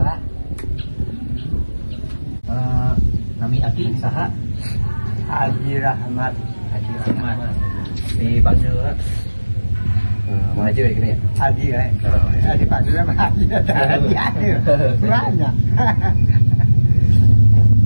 Nami aki saha? Haji Rahmat. Haji Rahmat. Dipanggil maju ya gini ya? Haji ya. Dipanggil sama Haji. Haji. Banyak.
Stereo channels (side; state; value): both; inverted; correlation -1.00